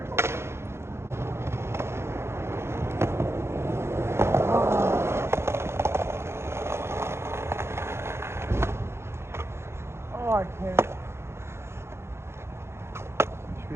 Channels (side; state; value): left; late; 0.12 ms